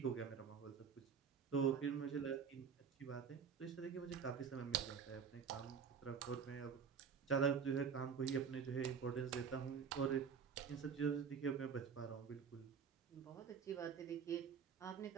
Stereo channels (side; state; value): left; quieter; 6.6 dB